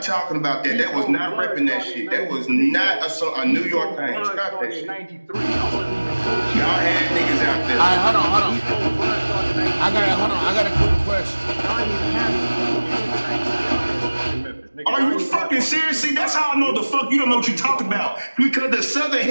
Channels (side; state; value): both; inverted; correlation -1.00